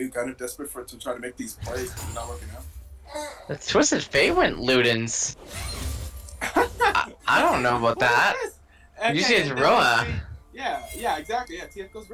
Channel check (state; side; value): identical; both; correlation 1.00